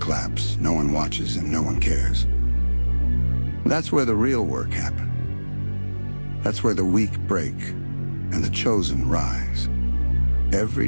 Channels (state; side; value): inverted; both; correlation -1.00